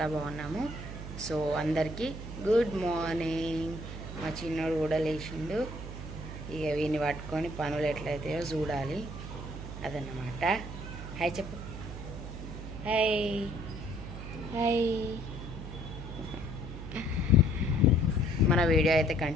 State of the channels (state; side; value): noise; right; hum, 9 dB below the sound